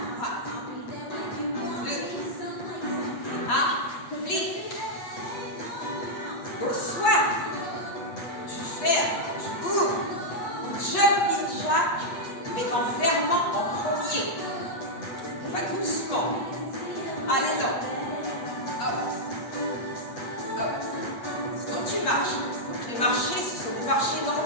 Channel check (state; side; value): late; right; 8.4 ms